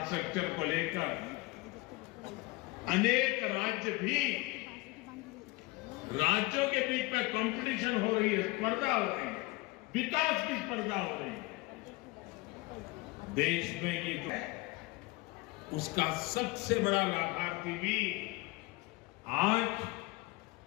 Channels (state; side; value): quieter; right; 22.4 dB